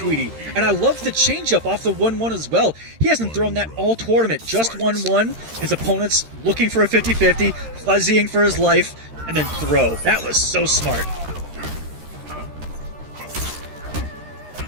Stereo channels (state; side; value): late; left; 13 ms